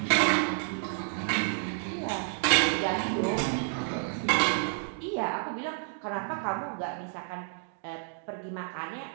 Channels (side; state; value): left; silent; 58 dB below the other